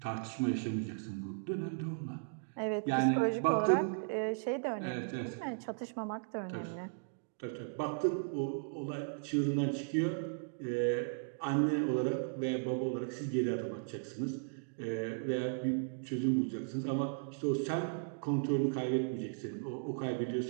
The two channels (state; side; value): silent; left; digital silence